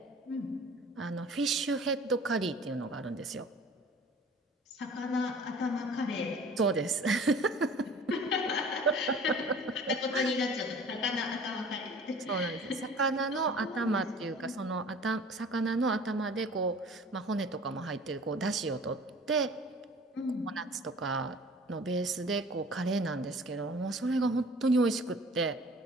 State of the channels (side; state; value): both; normal; correlation 0.46